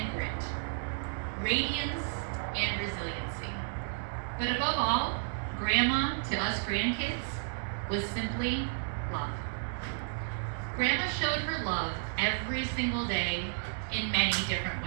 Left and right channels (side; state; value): left; silent; digital silence